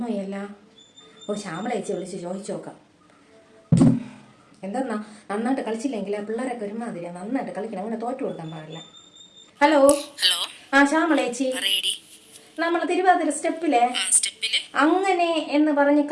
ഓ, ശ്യാമളേച്ചി വിളിച്ച് ചോദിച്ചു നോക്കാം. എന്താ നന്നായിട്ട് കളിച്ചില്ലെങ്കിൽ പിള്ളേരൊക്കെ ഒരുമാതിരിയാ. നന്നായിട്ട് കളിക്കണം, അങ്ങനെ തോറ്റു കൊടുക്കാൻ പാടില്ല. ഹലോ ഹലോ, ആ ശ്യാമളേച്ചി, നമ്മൾ തിരുവാതിര സ്റ്റെപ്പിലെ അങ്ങനെ എന്ന് പറഞ്ഞ്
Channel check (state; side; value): identical; both; correlation 1.00